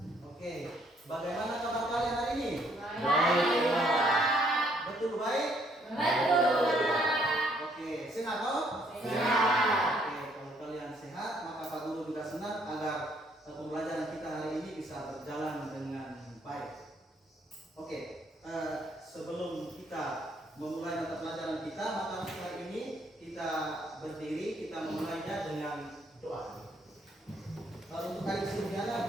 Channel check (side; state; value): both; normal; correlation 0.67